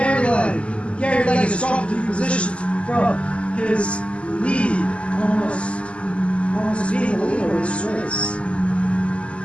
Legg. Gary Legg has dropped 2 positions from his lead, almost being the leader of this race.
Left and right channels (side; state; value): right; late; 0.057 ms